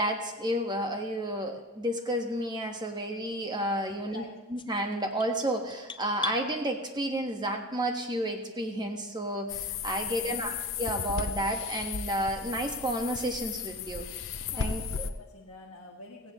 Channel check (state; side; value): normal; both; correlation 0.34